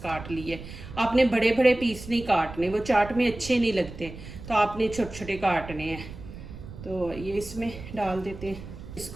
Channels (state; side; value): noise; right; rumble, 13 dB below the sound